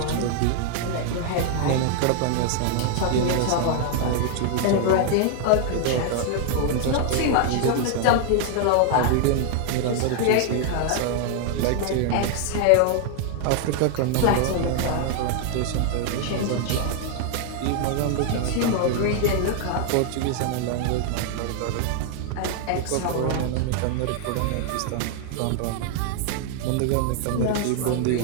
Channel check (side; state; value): both; different; correlation 0.00